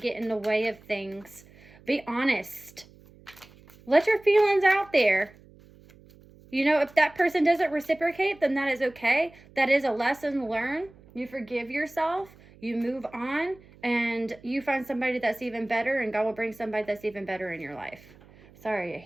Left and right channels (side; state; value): right; noise; hum, 25 dB below the sound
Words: in the way of things. Be honest. Let your feelings out there. If that person doesn't reciprocate, then that is okay. That is a lesson learned. You forgive yourself. You move on. And you find somebody that's even better. And God will bring somebody that's even better in your life. Sorry, a